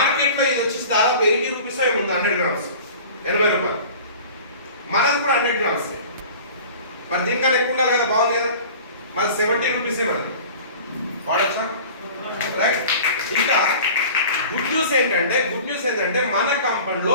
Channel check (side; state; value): both; inverted; correlation -0.41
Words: ఇది వచ్చి దాదాపు 80 రూపీస్ ఏముంది. 100 గ్రామ్స్ 80 రూపాయలు. మనది కూడా 100 గ్రామ్స్. మరి దీనికన్నా ఎక్కువ ఉండాలి కదా. బాగుంది కదా. మరి 70 రూపీసే మనది. వాడచ్చా? రైట్. ఇంకా గుడ్ న్యూస్ ఏంటంటే మన